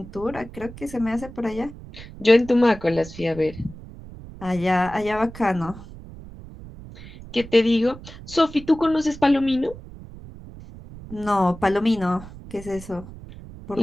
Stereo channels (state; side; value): noise; right; rumble, 16 dB below the sound